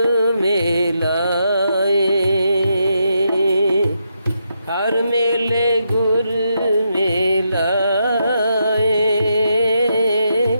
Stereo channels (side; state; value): both; inverted; correlation -0.82